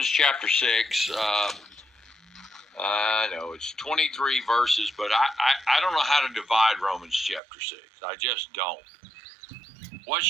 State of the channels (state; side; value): drops out; left; at 7.4 s